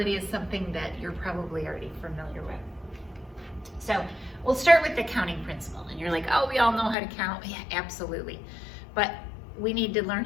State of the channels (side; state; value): right; drops out; at 7.0 s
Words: is something that you're probably already familiar with. So we'll start with the counting principle. And you're like, oh, we all know how to count. Yeah, absolutely. But we need to learn